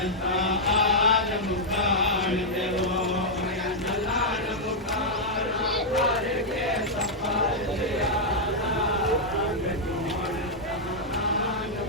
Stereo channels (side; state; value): both; normal; correlation -0.05